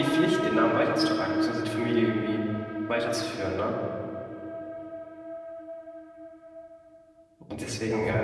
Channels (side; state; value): both; identical; correlation 1.00